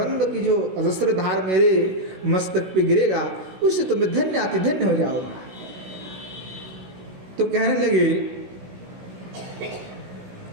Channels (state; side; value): late; left; 16 ms